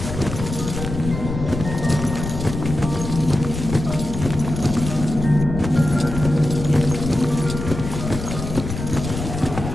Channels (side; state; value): left; noise; rumble, 6 dB below the sound